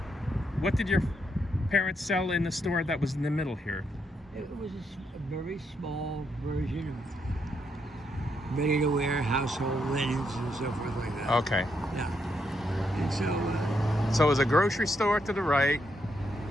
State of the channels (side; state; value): both; normal; correlation 0.78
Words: what did your parents sell in the store that was in the middle here? It was a very small version of ready-to-wear household linens and so forth like that. Okay. Yeah. And so it was a grocery store to the right.